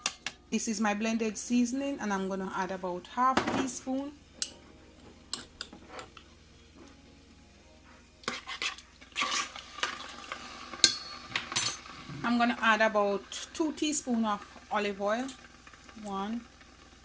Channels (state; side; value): identical; both; correlation 1.00